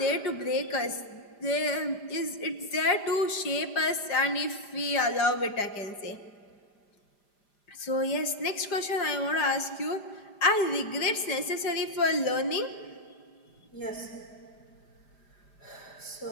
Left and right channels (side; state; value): right; late; 5.0 ms